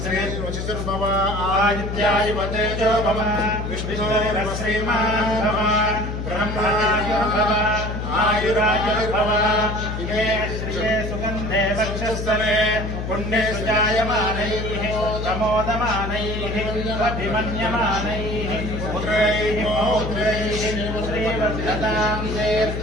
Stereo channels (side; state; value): left; noise; hum, 4 dB below the sound